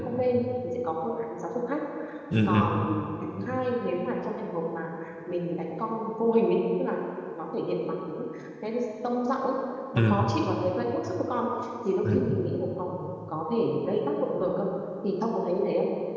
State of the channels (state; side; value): identical; both; correlation 1.00